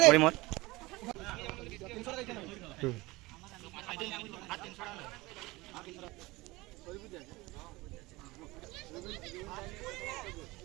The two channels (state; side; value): quieter; left; 21.4 dB